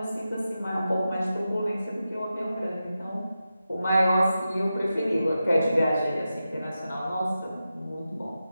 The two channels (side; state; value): both; inverted; correlation -0.91